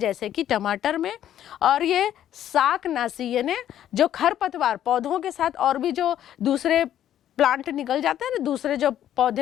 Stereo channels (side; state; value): right; quieter; 11.1 dB